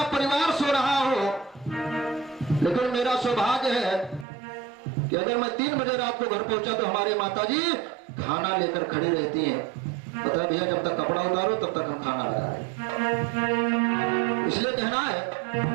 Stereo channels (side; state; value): left; drops out; at 4.2 s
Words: परिवार सो रहा हो, लेकिन मेरा सौभाग्य है कि अगर मैं 3 बजे रात को घर पहुंचा तो हमारी माताजी खाना लेकर खड़ी रहती हैं। पता है भैया, जब तक कपड़ा उतारो तब तक हम खाना लगाए, इसलिए कहना है